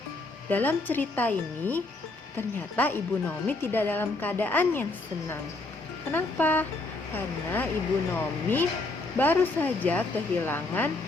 dalam cerita ini ternyata Ibu Naomi tidak dalam keadaan yang senang. Kenapa? Karena Ibu Naomi baru saja kehilangan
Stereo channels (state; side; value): quieter; right; 3.2 dB